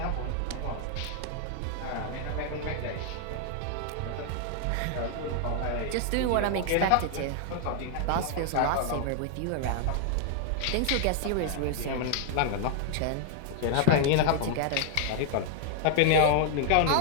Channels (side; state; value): both; different; correlation 0.00